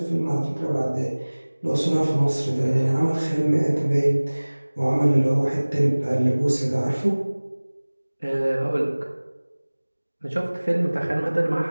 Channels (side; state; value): both; inverted; correlation -1.00